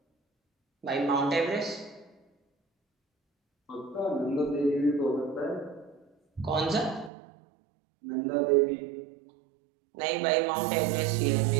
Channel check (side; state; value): left; drops out; at 7.1 s